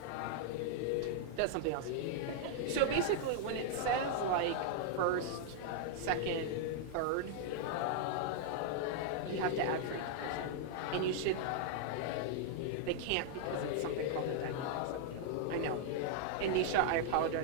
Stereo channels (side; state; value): both; different; correlation -0.01